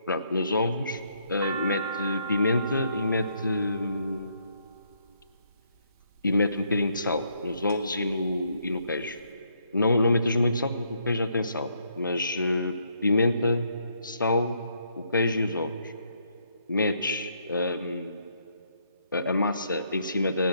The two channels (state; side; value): inverted; both; correlation -0.73